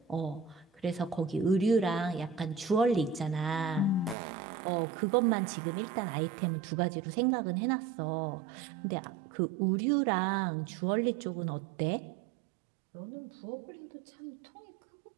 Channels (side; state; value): left; drops out; at 4.2 s